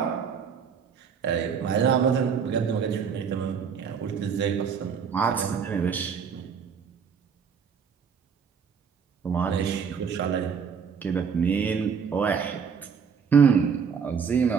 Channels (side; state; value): left; quieter; 6.6 dB